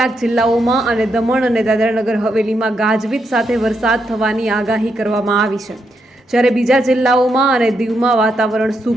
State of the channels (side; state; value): both; normal; correlation 0.81